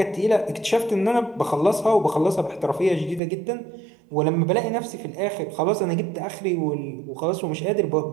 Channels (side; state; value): left; drops out; at 3.2 s